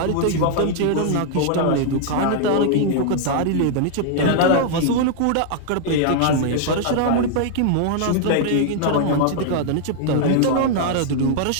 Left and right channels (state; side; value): different; both; correlation -0.01